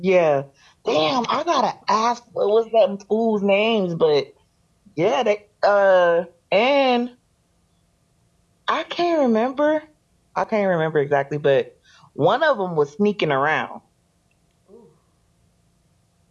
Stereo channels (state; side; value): identical; both; correlation 1.00